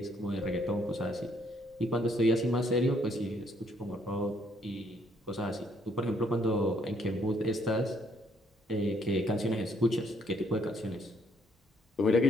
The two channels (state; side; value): normal; both; correlation 0.68